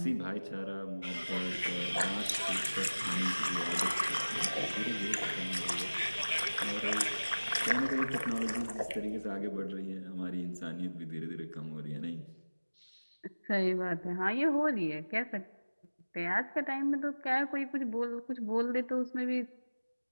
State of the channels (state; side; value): inverted; both; correlation -1.00